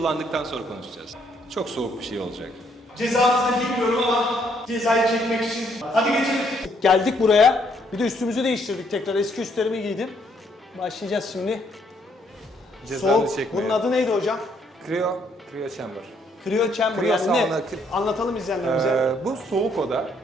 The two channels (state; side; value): normal; both; correlation 0.69